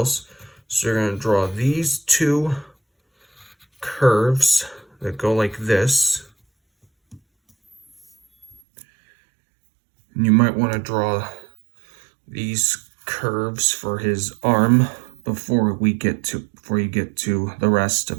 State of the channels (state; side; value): drops out; left; at 8.6 s